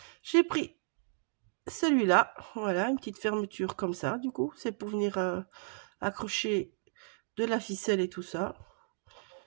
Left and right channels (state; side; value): silent; left; digital silence